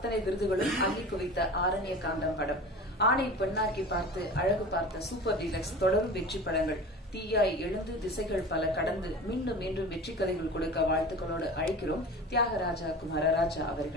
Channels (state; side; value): normal; both; correlation 0.36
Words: விருதுகளும் அள்ளி குவித்த ஆரண்ய காண்டம் படம், ஆணை பெண்ணாக்கி பார்த்து, அழகு பார்த்த, சூப்பர் டீலக்ஸ் தொடரும் வெற்றி படங்கள், தீயாய் எழுந்து திசைகள் பல கடந்து மீண்டும் மீண்டும் வெற்றி கதைகள் கொடுக்க வாழ்த்துக்களோடு அழைக்கிறோம் தியாகராஜா குமாரராஜா